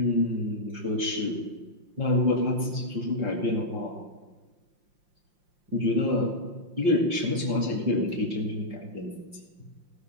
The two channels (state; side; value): late; left; 5.7 ms